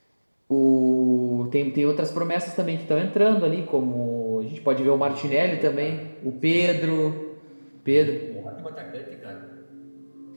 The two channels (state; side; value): inverted; both; correlation -1.00